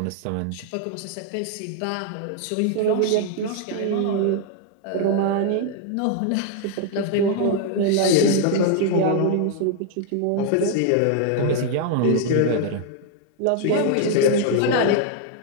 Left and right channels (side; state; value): both; different; correlation 0.00